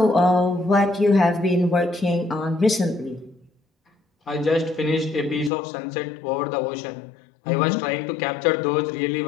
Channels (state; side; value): drops out; right; at 5.5 s